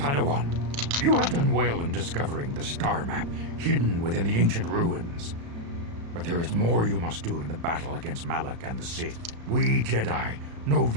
you have done well in discovering the star map hidden within the ancient ruins. But there is more you must do in the battle against Malak and the Sith. We Jedi know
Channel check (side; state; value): left; late; 35 ms